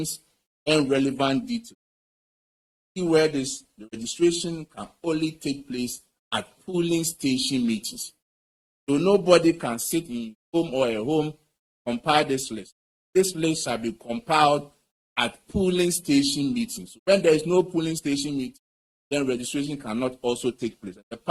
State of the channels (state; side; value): identical; both; correlation 1.00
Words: and relevant details. Where the registration can only take place at polling station meetings. So nobody can sit in home or at home compile this list. This list shall be compiled at polling station meetings. So when there is no polling station meeting, then registration cannot also take place. The